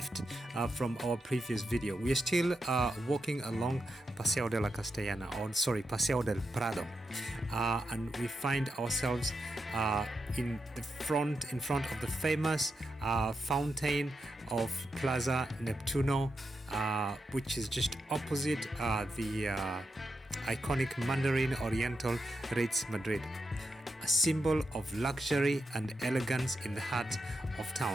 from our previous video. We are still walking along Paseo de la Castellana, Paseo del Prado, and we find ourselves in front of the famous fountain of Plaza Neptuno, which is just opposite the iconic Mandarin Oriental Ritz Madrid, a symbol of luxury and elegance in the heart of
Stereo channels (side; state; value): both; normal; correlation 0.86